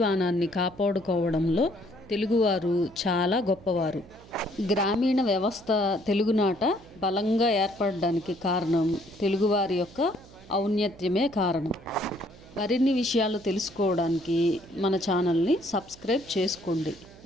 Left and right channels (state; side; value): noise; right; hum, 22 dB below the sound